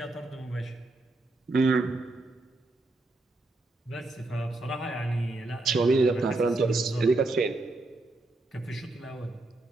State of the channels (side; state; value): left; quieter; 3.0 dB